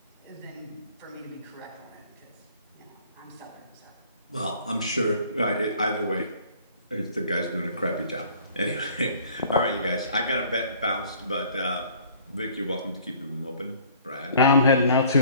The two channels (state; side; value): inverted; both; correlation -0.53